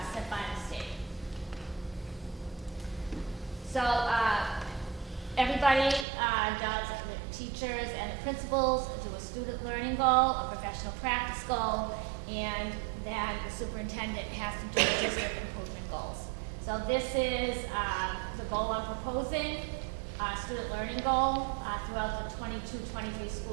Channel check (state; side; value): drops out; left; at 6.1 s